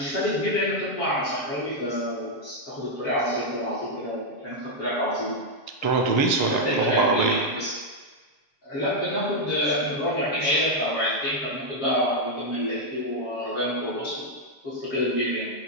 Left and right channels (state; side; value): late; right; 7.4 ms